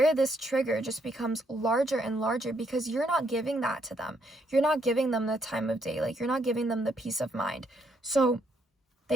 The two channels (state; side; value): normal; both; correlation 0.73